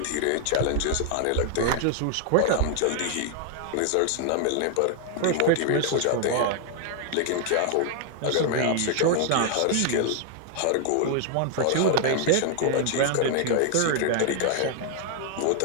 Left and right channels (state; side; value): different; both; correlation 0.00